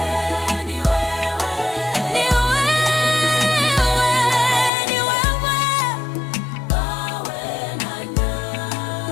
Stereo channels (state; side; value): drops out; right; at 4.7 s